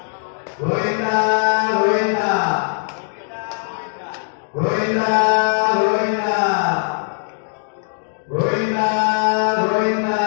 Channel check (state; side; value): silent; right; 62 dB below the other